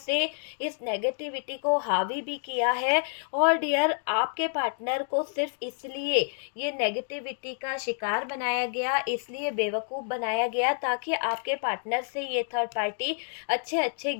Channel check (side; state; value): right; silent; digital silence